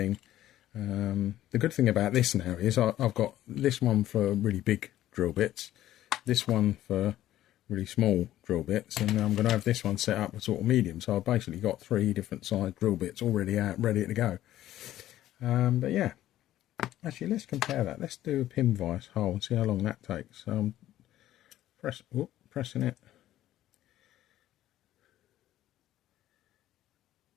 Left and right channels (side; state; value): right; quieter; 13.5 dB